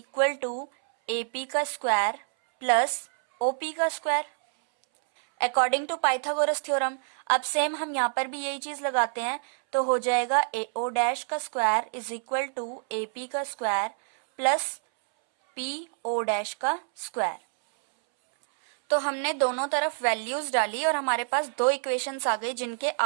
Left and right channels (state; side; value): silent; left; 60 dB below the other